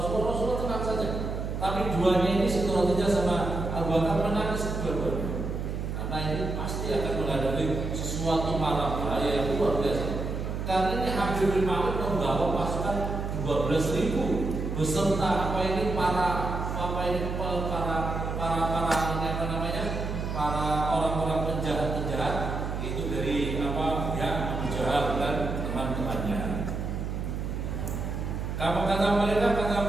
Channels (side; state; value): right; noise; hum, 3 dB below the sound